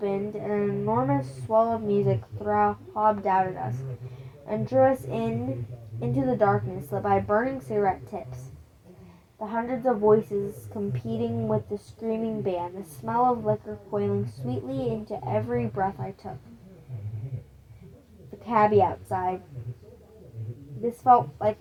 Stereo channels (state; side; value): identical; both; correlation 1.00